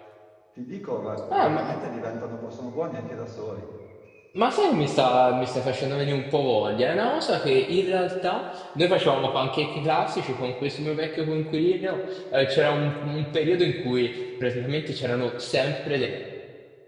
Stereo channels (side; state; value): both; identical; correlation 1.00